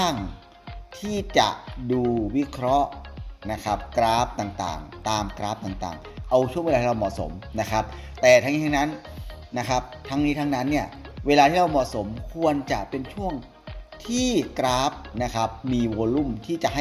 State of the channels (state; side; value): identical; both; correlation 1.00